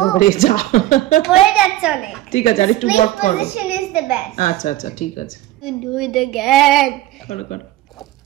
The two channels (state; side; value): quieter; left; 15.4 dB